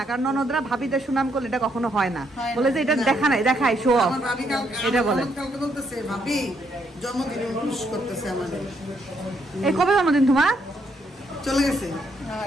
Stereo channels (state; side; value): normal; both; correlation 0.74